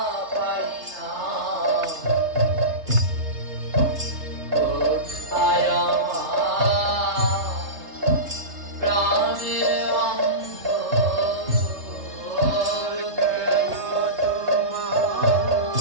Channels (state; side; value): late; left; 3.3 ms